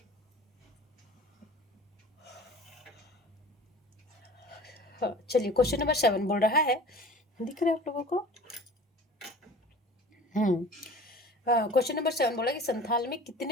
हाँ, चलिए क्वेश्चन नंबर 7 बोल रहा है, दिख रहा है आप लोगों को, क्वेश्चन नंबर 7 बोला कि संथाल में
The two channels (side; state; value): both; normal; correlation 0.42